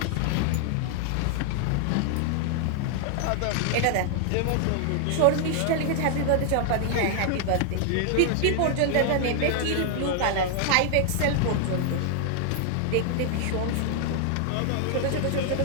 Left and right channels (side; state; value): both; different; correlation 0.00